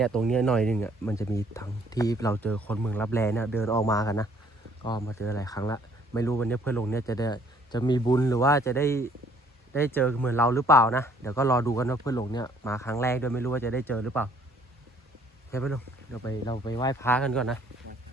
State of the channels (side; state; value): both; normal; correlation 0.61